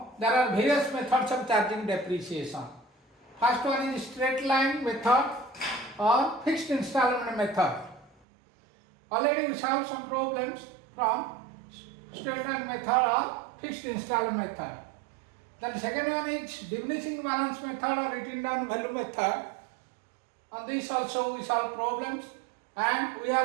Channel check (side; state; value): left; drops out; at 8.1 s